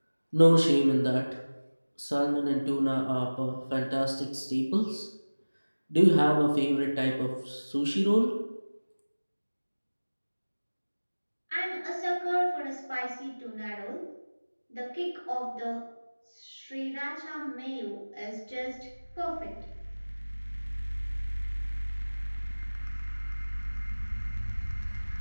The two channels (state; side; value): inverted; both; correlation -1.00